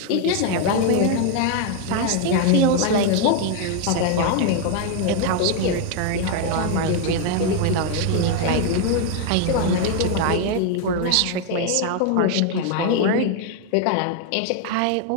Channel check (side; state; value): both; different; correlation 0.01